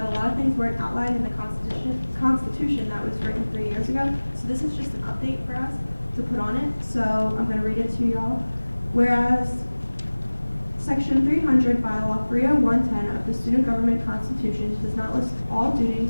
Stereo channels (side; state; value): both; inverted; correlation -1.00